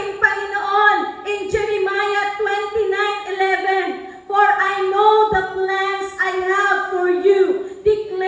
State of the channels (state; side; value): identical; both; correlation 1.00